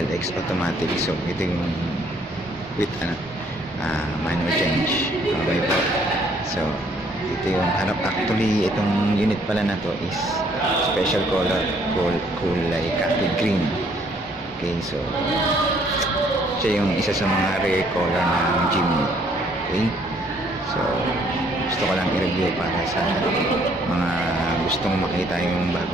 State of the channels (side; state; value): both; normal; correlation 0.64